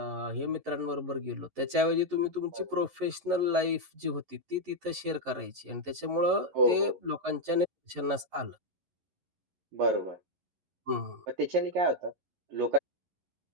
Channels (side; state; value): left; late; 11 ms